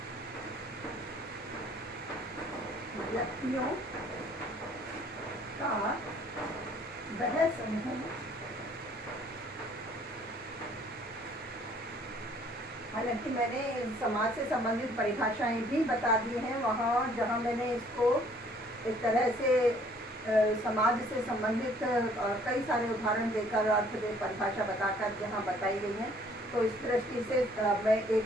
व्यक्तियों का वह समूह। हालांकि मैंने समाज से संबंधित परिभाषाएं भी बता दी हैं वहाँ जहाँ मैंने इसको एक तरह से समाज से संबंधित कई सारे उदाहरण देकर अर्थ में परिभाषा बताकर जहाँ बताई गई है। तो इस दृष्टि से मैं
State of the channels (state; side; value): normal; both; correlation 0.59